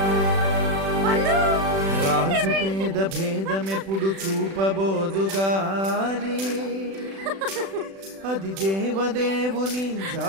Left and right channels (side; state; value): left; late; 36 ms